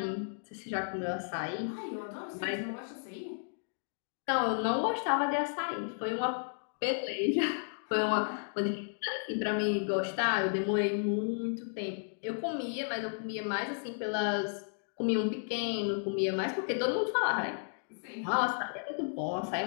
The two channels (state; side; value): silent; right; digital silence